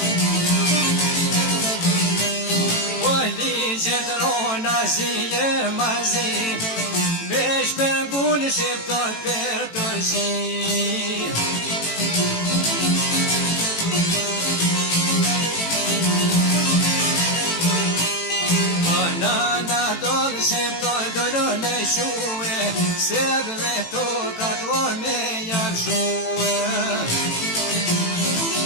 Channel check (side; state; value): right; late; 18 ms